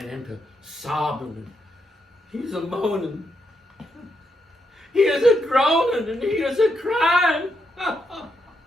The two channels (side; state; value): both; normal; correlation 0.81